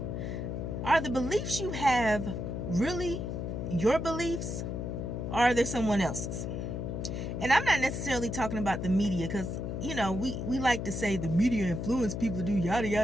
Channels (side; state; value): left; noise; hum, 4 dB below the sound